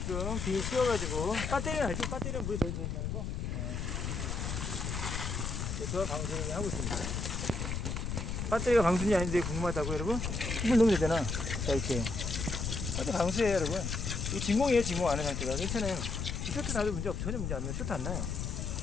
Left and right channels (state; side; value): noise; left; rumble, 3 dB below the sound